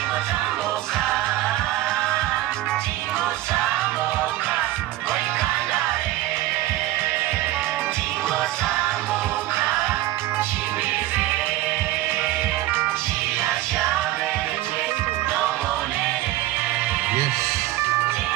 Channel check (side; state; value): left; quieter; 15.7 dB